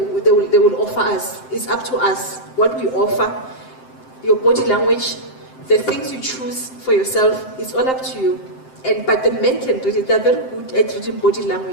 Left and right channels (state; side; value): late; right; 7.7 ms